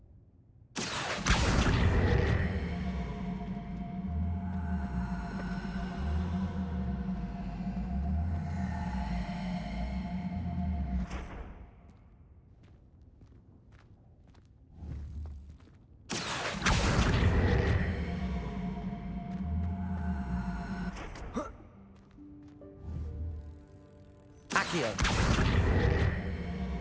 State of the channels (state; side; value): identical; both; correlation 1.00